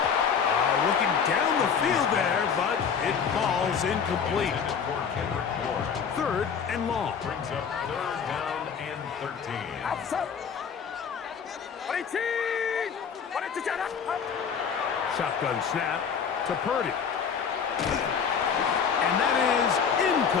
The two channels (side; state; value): right; quieter; 6.7 dB